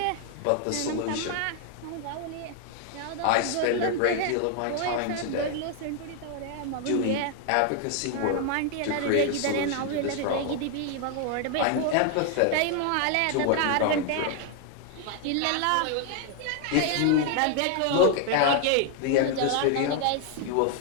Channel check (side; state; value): both; different; correlation 0.00